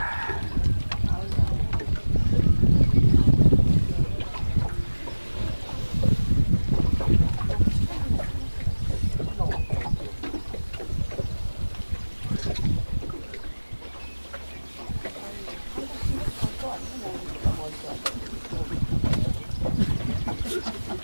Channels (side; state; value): both; inverted; correlation -1.00